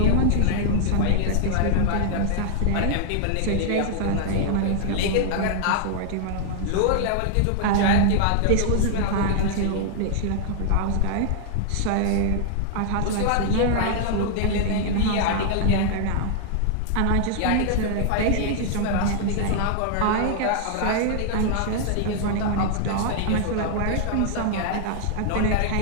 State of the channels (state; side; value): different; both; correlation -0.01